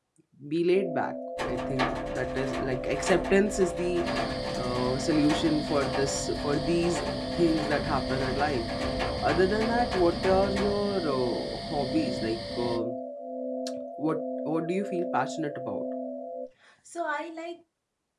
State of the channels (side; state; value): both; identical; correlation 1.00